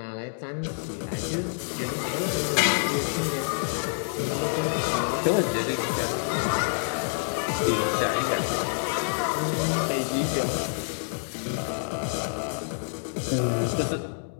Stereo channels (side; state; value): right; silent; digital silence